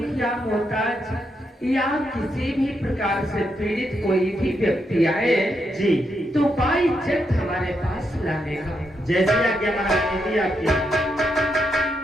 मोहताज या किसी भी प्रकार से पीड़ित कोई भी व्यक्ति आए जी तो बाइज्जत हमारे पास लाने का। जैसे आज्ञा महारानी जी आपकी।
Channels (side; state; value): both; normal; correlation 0.81